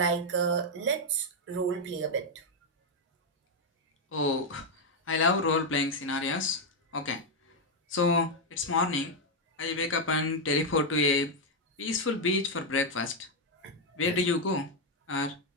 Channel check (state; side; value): normal; both; correlation 0.01